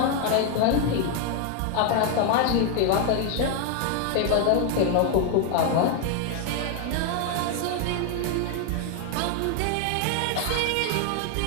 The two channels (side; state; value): both; different; correlation 0.01